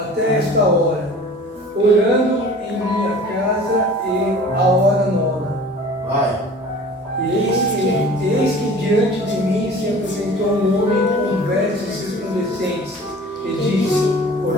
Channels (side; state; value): both; normal; correlation 0.44